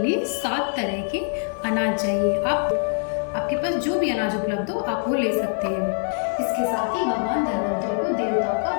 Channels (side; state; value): right; silent; 63 dB below the other